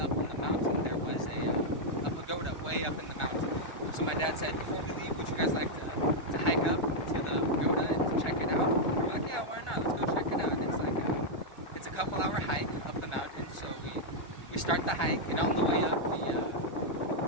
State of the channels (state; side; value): late; right; 1.4 ms